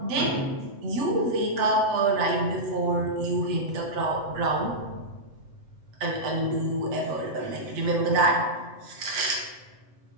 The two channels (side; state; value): left; late; 7.9 ms